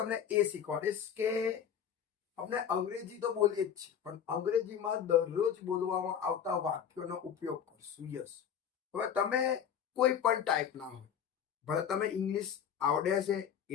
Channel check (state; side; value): quieter; right; 8.4 dB